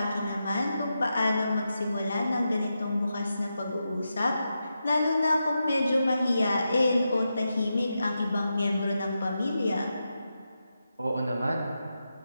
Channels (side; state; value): both; inverted; correlation -0.88